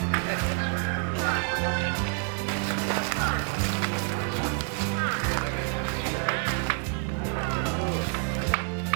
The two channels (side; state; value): left; quieter; 38.6 dB